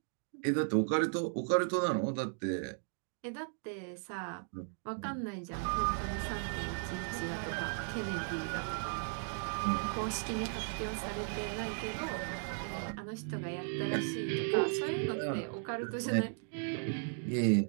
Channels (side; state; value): left; silent; 54 dB below the other